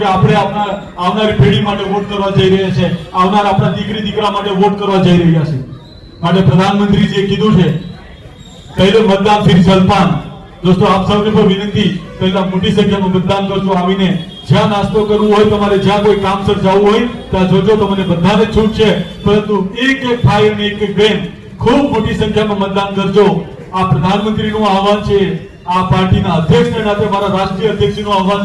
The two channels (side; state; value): both; identical; correlation 1.00